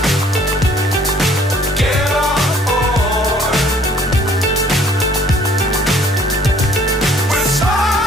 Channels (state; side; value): normal; both; correlation 0.58